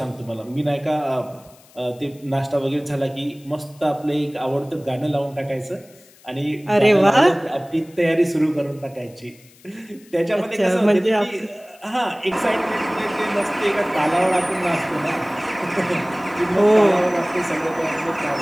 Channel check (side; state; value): left; noise; hiss, 27 dB below the sound